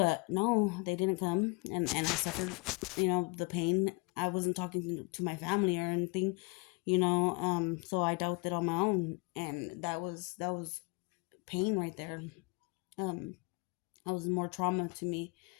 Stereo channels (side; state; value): right; quieter; 28.2 dB